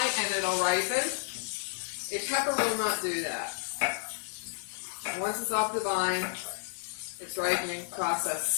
and it'll ripen. A pepper will not do that. And once it's off the vine, its ripening process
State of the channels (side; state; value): right; silent; 57 dB below the other